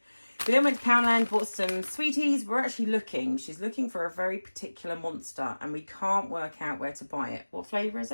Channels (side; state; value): both; inverted; correlation -1.00